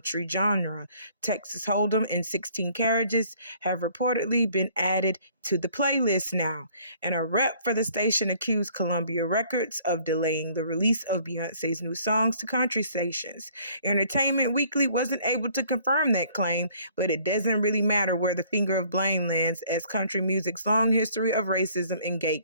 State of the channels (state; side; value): inverted; both; correlation -0.59